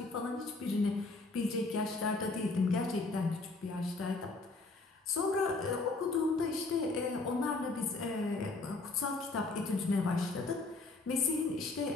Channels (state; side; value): quieter; right; 3.5 dB